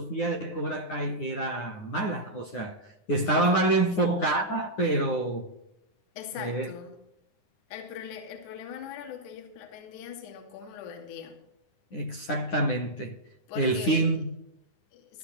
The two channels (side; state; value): right; late; 9.8 ms